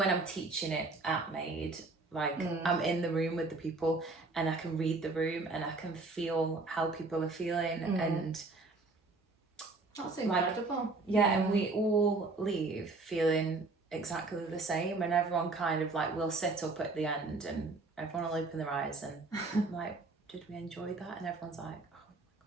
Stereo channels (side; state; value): left; quieter; 3.5 dB